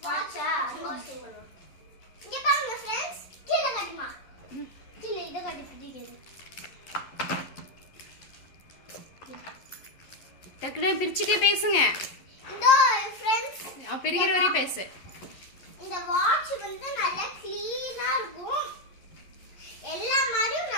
வாட்சா அன்பாக்சிங் பண்ணுவோம். இங்க பாருங்க फ्रेंड्स, கீழ காட்டுமா. கீழ இத காட்டி பிடிக்குது. டக்குனு பிரிச்சிட்டே பேசுங்க. இதோ फ्रेंड्स, பிரிக்கிற வரை பேசு. இந்த வாட்ச் வந்து நல்லா க்ளீனா இருக்கும். எல்லா மாதிரியும்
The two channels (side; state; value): right; late; 11 ms